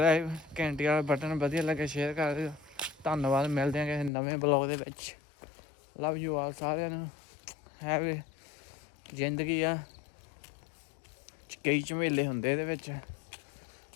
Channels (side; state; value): right; drops out; at 4.1 s